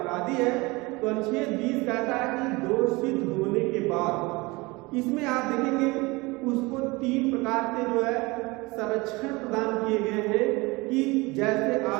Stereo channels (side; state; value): left; quieter; 23.9 dB